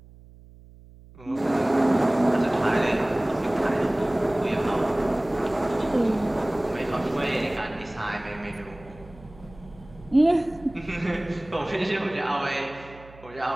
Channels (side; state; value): right; noise; hum, 22 dB below the sound